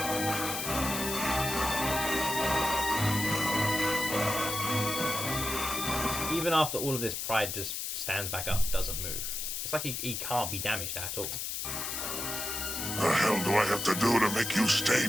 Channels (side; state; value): left; noise; hiss, 3 dB below the sound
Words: Even after all of this, Pride just stands back up, doesn't move. It's like he can't be damaged at all. The hell do I have to do to make you stay